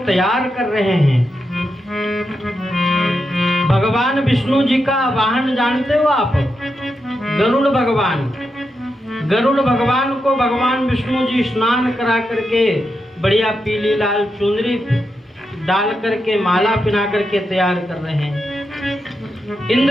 तैयार कर रहे हैं। भगवान विष्णु जी का वाहन जानते हो आप, गरुड़ भगवान। गरुड़ भगवान को भगवान विष्णु जी स्नान करा करके बढ़िया पीली लाल चुनरी डाल करके माला पहना करके तैयार कर रहे हैं।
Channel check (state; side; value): normal; both; correlation 0.86